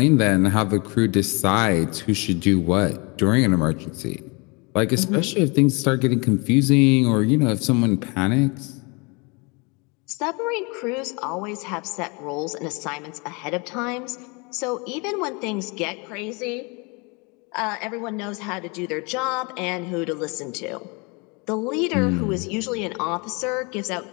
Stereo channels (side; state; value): right; quieter; 29.7 dB